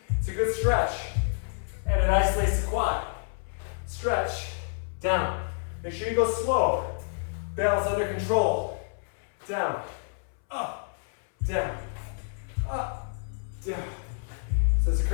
It's a good stretch, and it isolates the quad. Stretch, down. Make sure you go slow. Balance under control. Down, up, down, up, down. So as a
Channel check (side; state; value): right; silent; 59 dB below the other